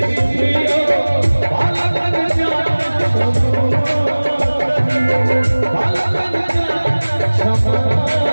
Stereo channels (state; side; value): inverted; both; correlation -1.00